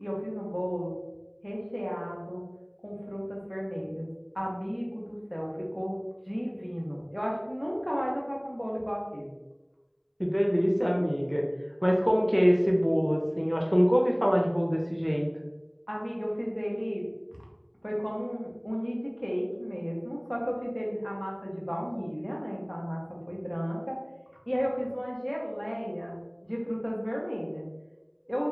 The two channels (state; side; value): identical; both; correlation 1.00